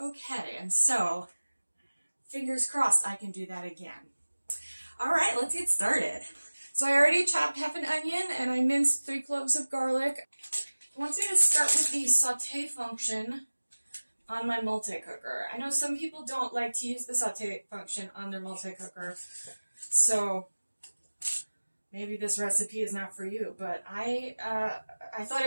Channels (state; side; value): inverted; both; correlation -1.00